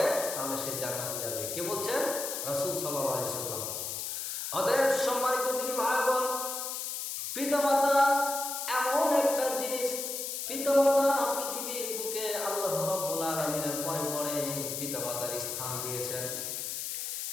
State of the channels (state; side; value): noise; left; hiss, 4 dB below the sound